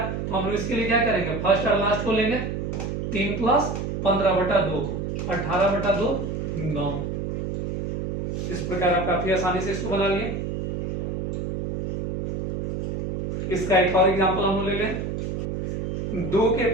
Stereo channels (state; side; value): noise; right; hum, 3 dB below the sound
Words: तो हम लोग इसके लिए क्या करेंगे, फर्स्ट और लास्ट को लेंगे। 3 + 15/2, 18/2, 9। इस प्रकार आप काफी आसानी से इसको बना लिए। इसका एक और एग्जाम्पल हम ले लें, 2 के